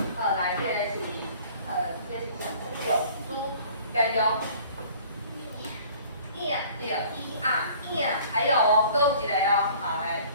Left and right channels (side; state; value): both; inverted; correlation -0.51